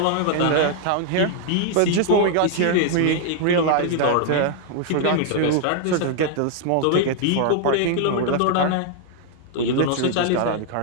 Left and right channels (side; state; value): both; different; correlation 0.00